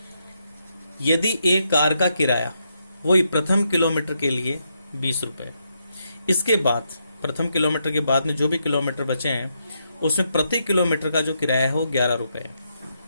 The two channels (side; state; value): both; inverted; correlation -0.80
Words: यदि एक कार का किराया वही प्रथम किलोमीटर के लिए 20 रुपए, इसके बाद प्रथम किलोमीटर के बाद में जो भी किलोमीटर बचे हैं उसमें प्रति किलोमीटर का जो किराया है वो 11 रुपए है,